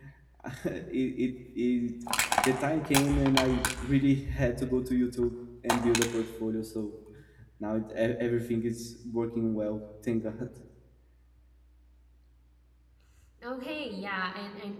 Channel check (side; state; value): both; identical; correlation 1.00